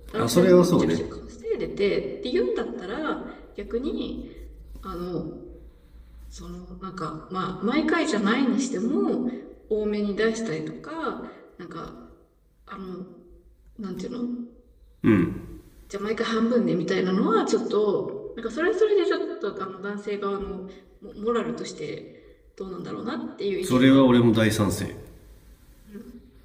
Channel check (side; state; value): both; identical; correlation 1.00